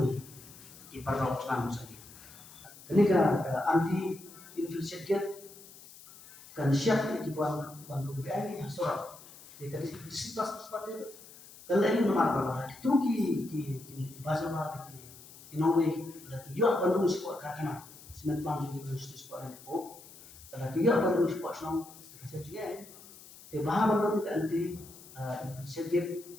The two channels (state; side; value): noise; left; hiss, 19 dB below the sound